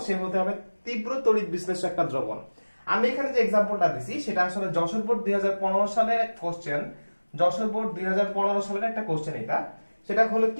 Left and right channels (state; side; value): inverted; both; correlation -1.00